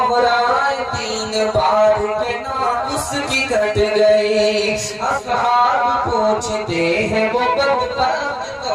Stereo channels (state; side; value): identical; both; correlation 1.00